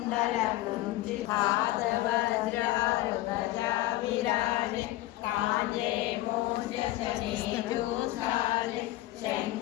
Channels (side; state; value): right; quieter; 16.7 dB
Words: कुंचित हाथ वज्र ध्वजा विराजे कांजे मोज जनेऊ साजे